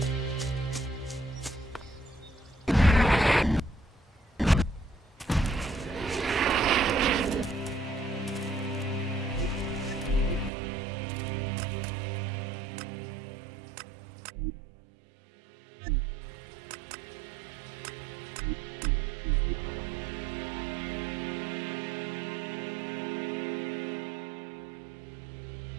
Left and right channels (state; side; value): drops out; left; at 10.5 s